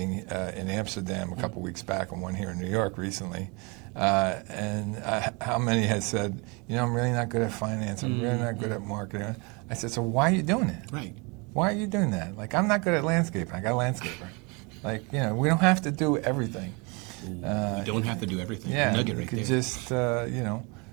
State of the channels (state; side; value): quieter; left; 29.8 dB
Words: in Amsterdam a couple weeks back and one here in New York recently. How many had said, I'm really not good at finance, I'm really not good at marketing. I said, so why are you doing it? Right. Why are you doing that? Like, I'm not good at landscaping, I got a landscaper. Like, we don't have to do everything. You don't have to do everything. Yeah, Nugget you right could there. just,